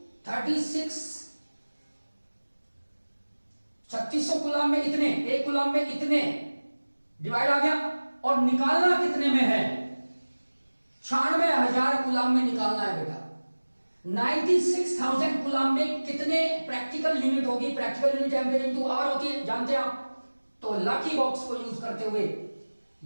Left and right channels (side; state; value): both; inverted; correlation -1.00